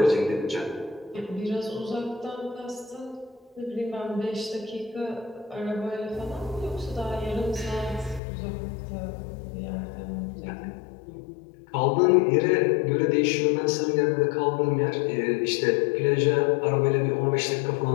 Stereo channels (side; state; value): right; drops out; at 8.2 s